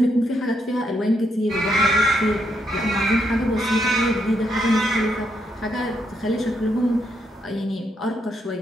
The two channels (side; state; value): both; normal; correlation 0.77